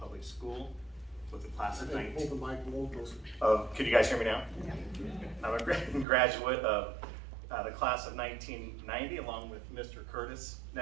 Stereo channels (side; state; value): left; drops out; at 6.1 s